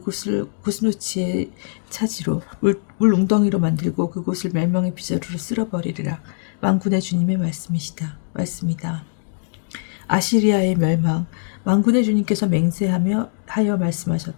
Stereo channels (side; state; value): right; silent; digital silence